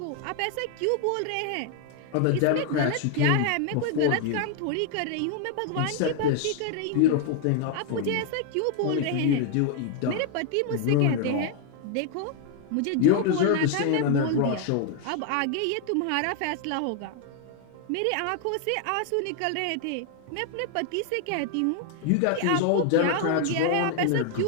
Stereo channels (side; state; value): both; different; correlation 0.00